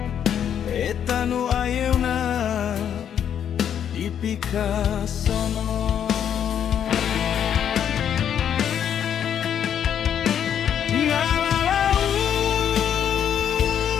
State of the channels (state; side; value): quieter; right; 9.0 dB